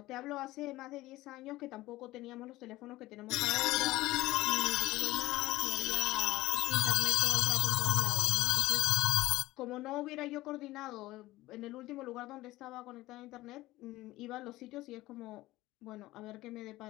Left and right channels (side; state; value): right; quieter; 17.7 dB